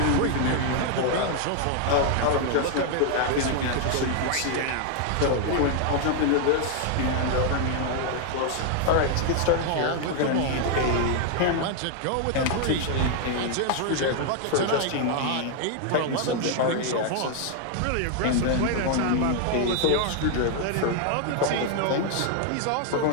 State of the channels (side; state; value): both; different; correlation 0.00